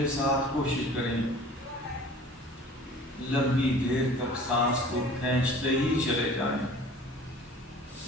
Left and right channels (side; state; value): both; normal; correlation 0.46